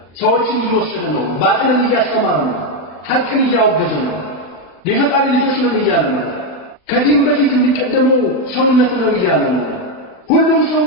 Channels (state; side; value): late; right; 40 ms